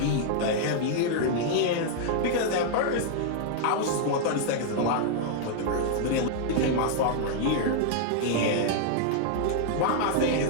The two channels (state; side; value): different; both; correlation -0.01